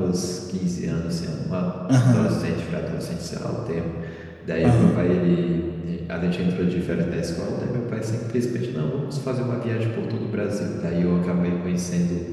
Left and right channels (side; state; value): both; identical; correlation 1.00